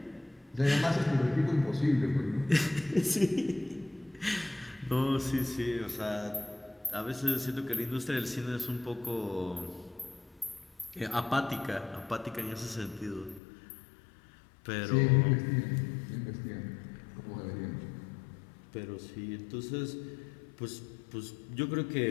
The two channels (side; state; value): right; drops out; at 13.4 s